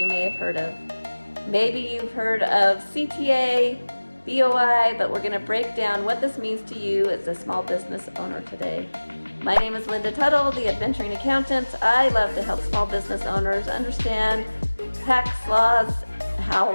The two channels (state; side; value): inverted; both; correlation -1.00